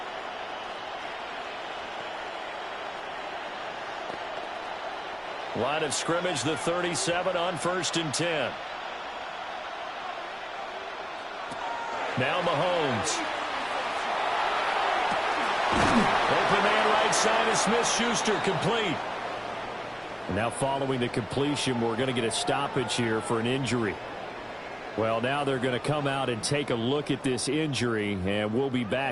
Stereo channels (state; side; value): identical; both; correlation 1.00